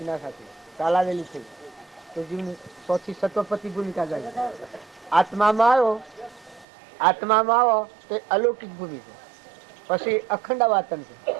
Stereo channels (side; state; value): left; drops out; at 6.7 s